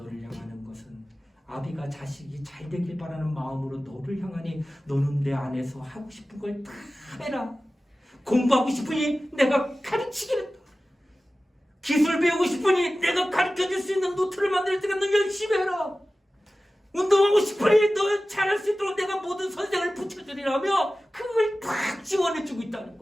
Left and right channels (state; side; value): normal; both; correlation 0.96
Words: 향하는 것은 아비가 자식이 잘 되길 바라는 마음으로 너를 향하니 너는 내 안에서 하고 싶은 걸 다 해라. 공부하고 싶으니 내가 가르치겠다. 기술 배우고 싶으니 내가 가르쳐줄 수 있는 노트를 만들 때가 너 열심히 해라. 운동하고 싶으니 너 잘할 수 있도록 내가 모든 선생을 붙여주리라며 그걸 다 지원해주고 있다는